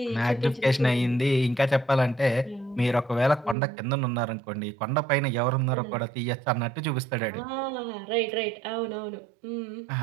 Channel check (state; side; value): drops out; left; at 3.6 s